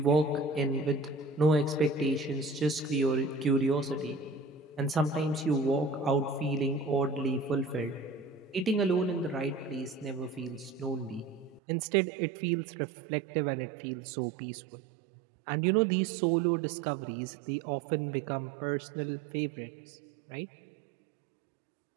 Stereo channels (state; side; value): drops out; left; at 11.6 s